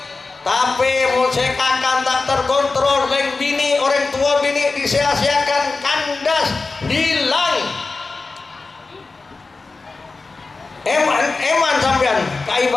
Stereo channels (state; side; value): quieter; right; 3.9 dB